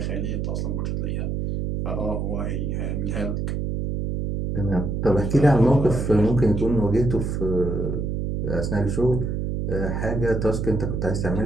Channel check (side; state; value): right; noise; hum, 1 dB below the sound